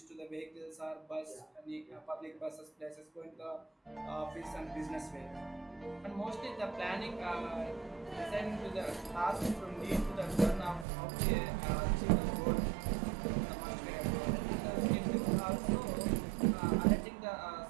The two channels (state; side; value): drops out; left; at 10.9 s